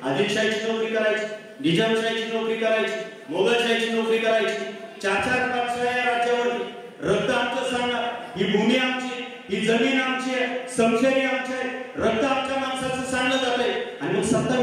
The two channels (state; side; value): identical; both; correlation 1.00